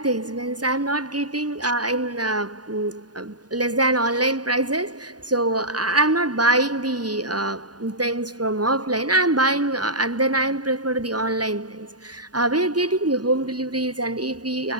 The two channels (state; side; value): late; left; 0.69 ms